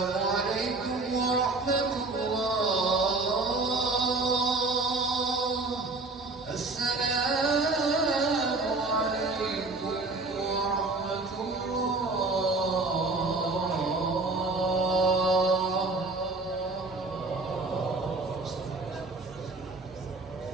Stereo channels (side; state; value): left; quieter; 3.4 dB